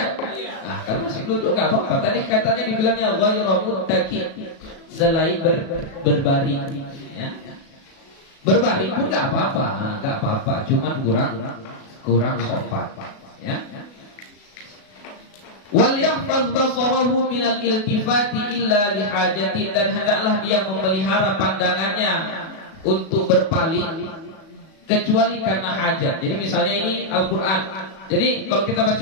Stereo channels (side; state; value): right; late; 36 ms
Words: Nah, kalau masih duduk enggak apa-apa. Tadi katanya dibilangnya ghairu muttaqi, selain berbaring, ya. Berbaring pun enggak apa-apa, cuma kurang sopan, ya. Wal yahfaz basarahu minal iltifati illa lihajatin, dan hendaklah dia memelihara pandangannya untuk berpaling kecuali karena hajat. Jadi misalnya ini Al-Quran. Jadi kalau kita